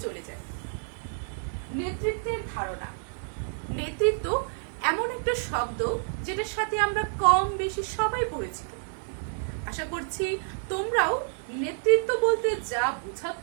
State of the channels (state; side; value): silent; left; digital silence